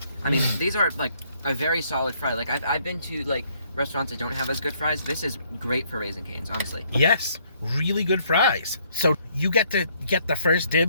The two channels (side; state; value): both; inverted; correlation -0.67